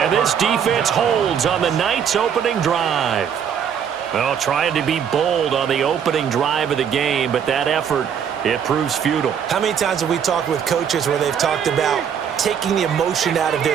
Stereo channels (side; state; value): left; quieter; 8.0 dB